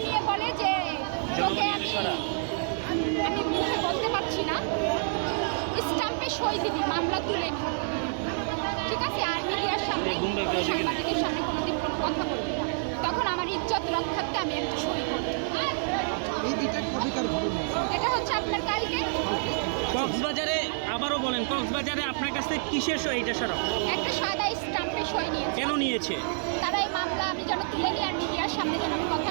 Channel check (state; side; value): silent; left; digital silence